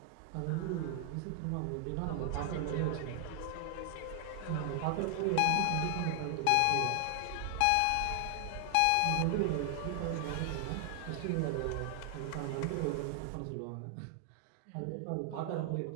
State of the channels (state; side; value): different; both; correlation 0.00